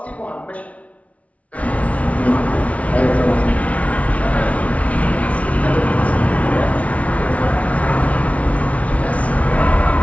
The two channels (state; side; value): late; right; 0.066 ms